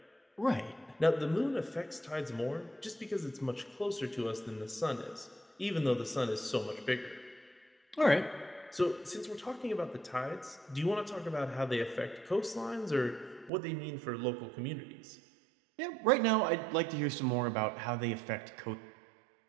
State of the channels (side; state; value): left; drops out; at 13.5 s